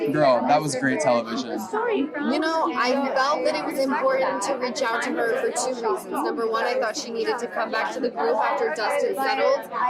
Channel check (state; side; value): identical; both; correlation 1.00